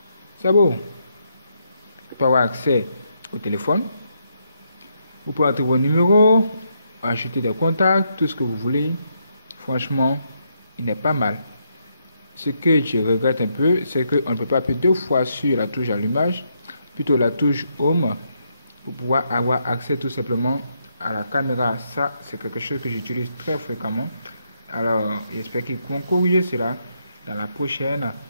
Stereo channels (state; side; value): inverted; both; correlation -0.78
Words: C'est beau. Vous pouvez avoir accès au téléphone. Vous pouvez entrer vos numéros, ajouter des contacts, tout ce que vous voulez. Franchement, il n'est pas mal. Ce que je regrette un peu, c'est qu'on ne peut pas appuyer 2 fois sur la touche allumage, plutôt la touche Home, pour pouvoir avoir accès tout simplement à la caméra. Ça, c'est quelque chose que j'utilise très fréquemment. Alors, j'espère qu'ils vont corriger cela dans la prochaine